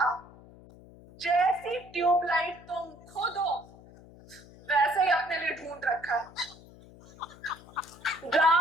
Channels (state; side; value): noise; left; hum, 21 dB below the sound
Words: जैसी ट्यूबलाइट तुम खुद हो वैसे ही अपने लिए ढूंढ रखा है।